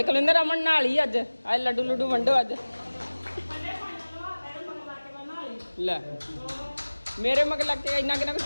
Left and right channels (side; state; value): both; inverted; correlation -1.00